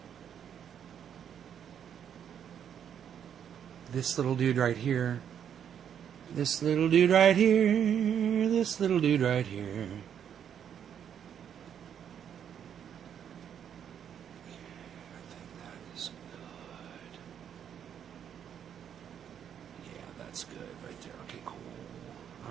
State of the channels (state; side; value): quieter; left; 8.7 dB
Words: This little dude right here. This little dude right here. This little dude right here.